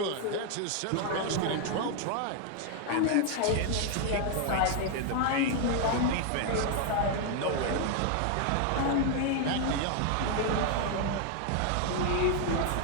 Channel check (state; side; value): different; both; correlation 0.00